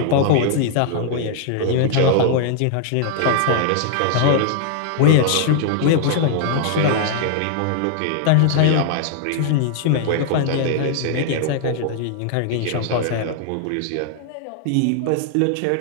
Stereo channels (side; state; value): both; different; correlation -0.01